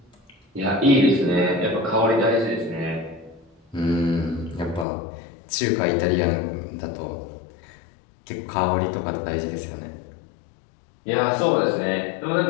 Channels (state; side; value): drops out; right; at 4.9 s